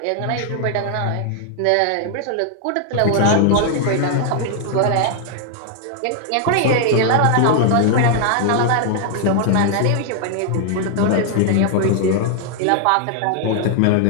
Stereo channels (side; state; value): both; different; correlation 0.00